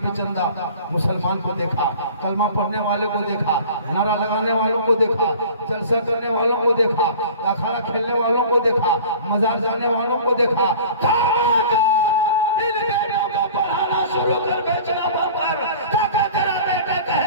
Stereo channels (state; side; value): inverted; both; correlation -0.43